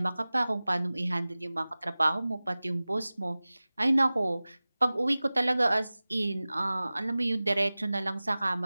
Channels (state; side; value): inverted; both; correlation -0.98